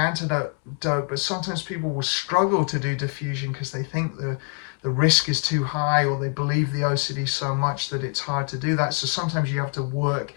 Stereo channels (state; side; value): quieter; right; 36.9 dB